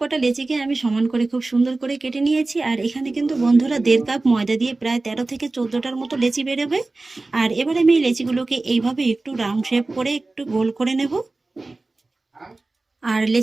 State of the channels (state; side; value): quieter; left; 3.3 dB